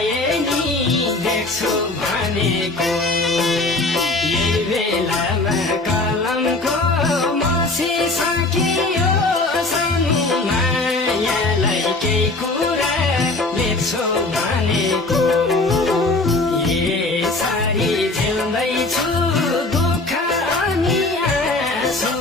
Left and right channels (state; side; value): quieter; right; 3.0 dB